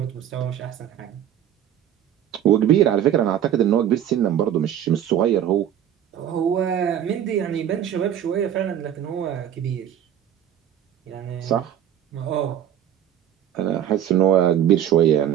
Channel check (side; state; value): left; quieter; 10.4 dB